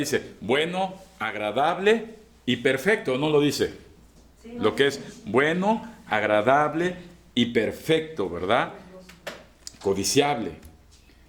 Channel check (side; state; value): both; identical; correlation 1.00